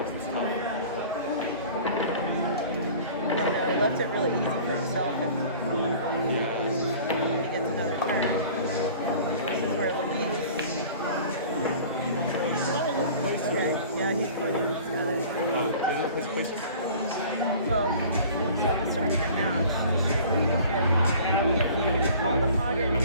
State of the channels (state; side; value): inverted; both; correlation -0.45